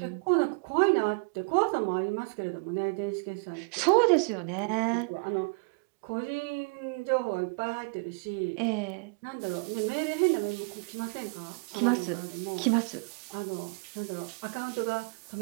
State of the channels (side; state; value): left; quieter; 34.5 dB